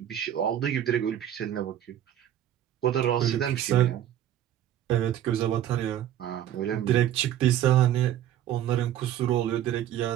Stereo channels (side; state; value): left; quieter; 11.3 dB